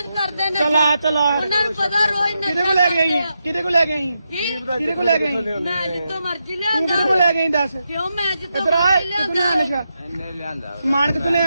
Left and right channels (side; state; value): both; inverted; correlation -0.86